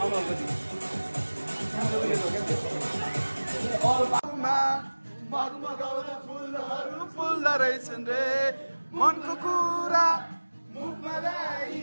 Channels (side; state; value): both; inverted; correlation -1.00